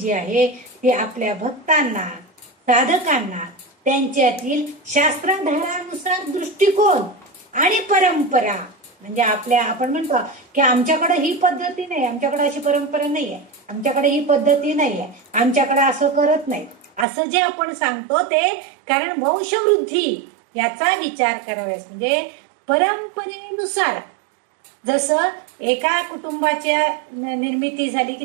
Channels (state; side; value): drops out; left; at 17.1 s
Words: आहे ती आपल्या भक्तांना साधकांना त्यांच्यातील शास्त्राधारानुसार दृष्टिकोन आणि परंपरा, म्हणजे आपण म्हणतो की आमच्याकडे ही पद्धती नाही, आमच्याकडे अशी परंपरा नाहीये, आमच्याकडे ही पद्धती नाहीये, आमच्याकडे असं करत नाही, असं जे आपण सांगतो ते कारण वंशवृद्धी याचा विचार कराव्यास, म्हणजे परंपरेनुसार जसं एका कुटुंबाच्या निर्मिती झाली